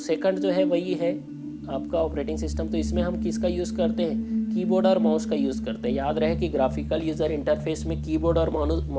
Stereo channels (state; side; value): identical; both; correlation 1.00